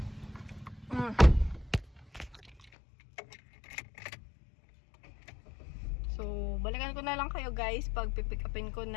So, balikan ko na lang kayo guys pag pipick upin ko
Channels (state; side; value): drops out; right; at 2.7 s